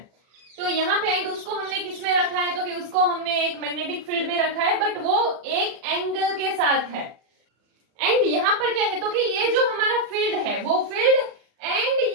तो यहाँ पे एंड उसको हमने किस में रखा है, तो कि उसको हमने एक मैग्नेटिक फील्ड में रखा है, बट वो एक एंगल के साथ है। एंड यहाँ पर क्या है, तो कि ये जो हमारा फील्ड है वो फील्ड एंड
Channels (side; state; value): left; late; 40 ms